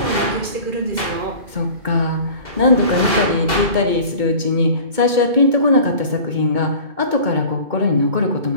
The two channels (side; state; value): left; late; 2.2 ms